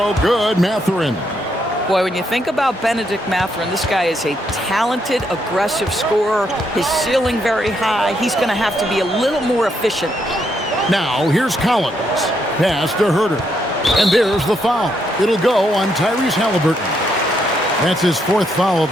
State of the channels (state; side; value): normal; both; correlation 0.76